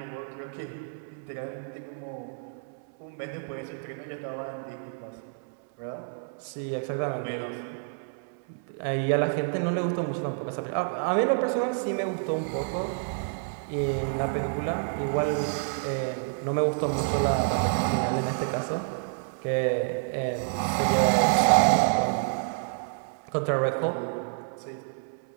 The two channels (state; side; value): silent; left; 59 dB below the other